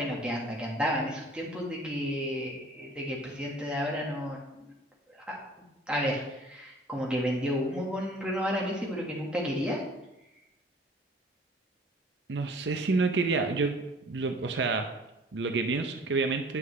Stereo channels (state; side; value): normal; both; correlation 0.51